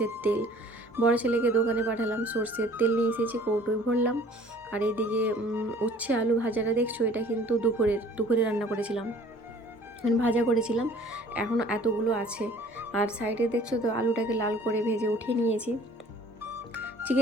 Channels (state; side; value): normal; both; correlation 0.52